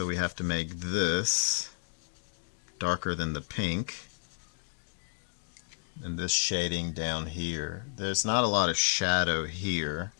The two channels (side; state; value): right; silent; digital silence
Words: we have to make this darker than the pink. And this shading down here. There's not a lot of shadow here,